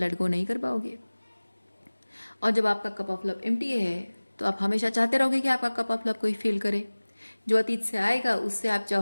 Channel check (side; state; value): both; inverted; correlation -1.00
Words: गो नहीं कर पाओगे। और जब आपका कप ऑफ लव एम्प्टी है तो आप हमेशा चाहते रहोगे कि आपका कप ऑफ लव कोई फील करे। जो अतीत से आएगा उससे आप